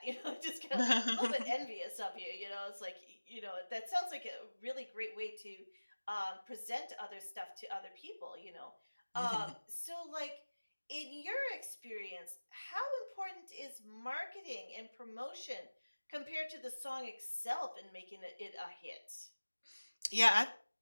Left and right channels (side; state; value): both; inverted; correlation -1.00